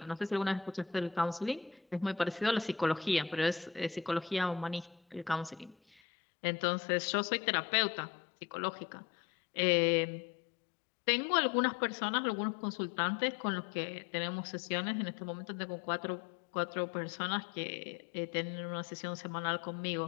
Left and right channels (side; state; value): right; drops out; at 6.0 s